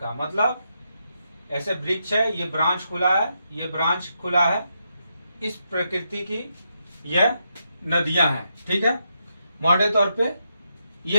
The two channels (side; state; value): both; inverted; correlation -0.82